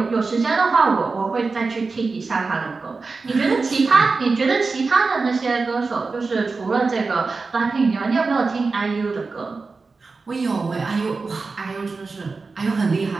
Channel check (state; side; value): quieter; left; 4.2 dB